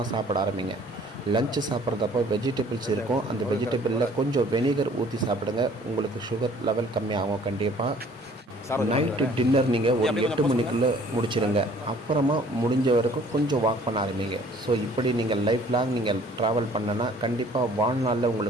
சாப்பிட ஆரம்பிங்க. லஞ்சு சாப்பிட்றதப்போ வெஜிடபிள்ஸ் இருக்கும், அந்த வெஜிடபிளில் கொஞ்சம் வெனிகர் ஊற்றி சாப்பிடுங்க, உங்களுக்கு சுகர் லெவல் கம்மியாகும். கண்டிப்பாக நைட்டு டின்னர் நீங்கள் ஒரு 8 மணிக்குள்ளே முடிச்சிடுங்க, அப்புறமா முடிஞ்ச வரைக்கும் கொஞ்சம் வாக் பண்ண ஆரம்பிங்க. ஸோ இப்படி நீங்கள் லைஃப் லாங் நீங்கள் ட்ராவல் பண்ணனா கண்டிப்பாக வாழ்நாளில்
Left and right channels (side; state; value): both; normal; correlation 0.55